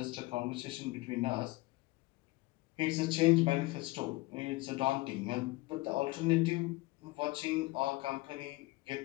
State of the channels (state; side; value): quieter; right; 21.7 dB